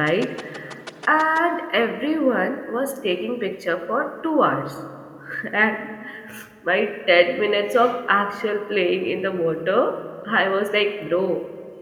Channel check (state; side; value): identical; both; correlation 1.00